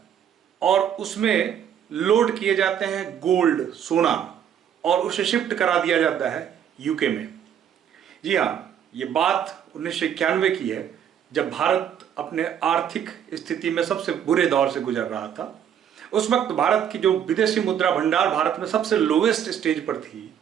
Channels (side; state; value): left; quieter; 9.1 dB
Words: और उसमें लोड किए जाते हैं गोल्ड, सोना, और उसे शिफ्ट करा दिया जाता है यूके में। जी हाँ, ये बात 1991 की है, जब भारत अपने आर्थिक स्थिति में सबसे बुरे दौर से गुजर रहा था। उस वक्त भारत की जो विदेशी मुद्रा भंडार भारत में सबसे लोवेस्ट स्टेज पर थी